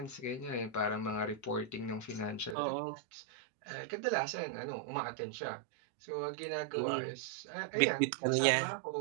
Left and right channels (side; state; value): left; drops out; at 2.6 s